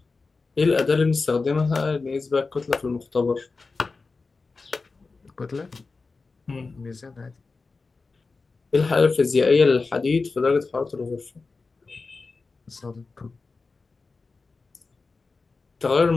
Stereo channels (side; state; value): right; quieter; 4.1 dB